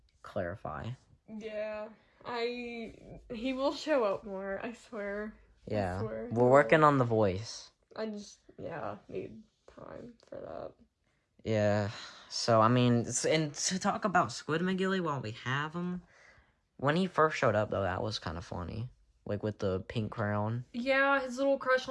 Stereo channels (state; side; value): identical; both; correlation 1.00